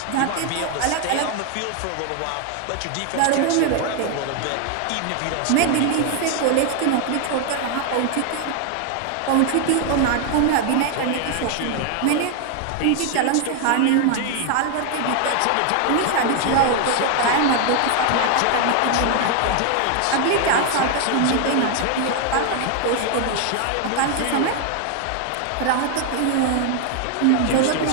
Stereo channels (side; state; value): both; different; correlation 0.00